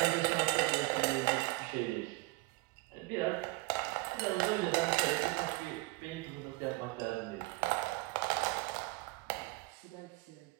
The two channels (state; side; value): quieter; left; 23.0 dB